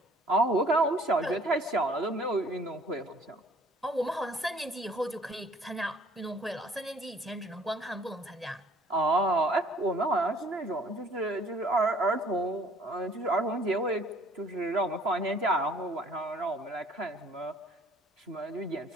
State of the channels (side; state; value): both; normal; correlation 0.56